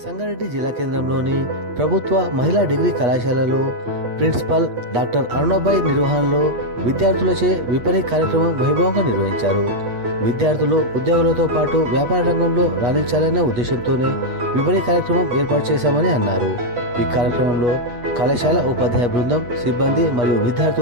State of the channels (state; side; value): late; left; 8.3 ms